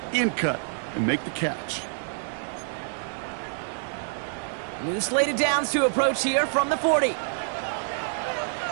in cut and make the catch. New slated downs to approach here from the 40.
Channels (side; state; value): left; silent; digital silence